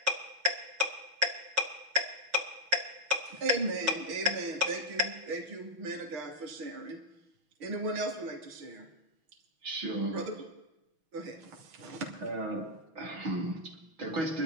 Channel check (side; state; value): left; late; 6.1 ms